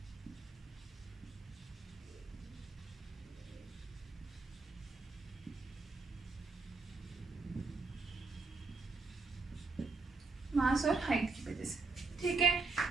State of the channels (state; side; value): quieter; left; 4.1 dB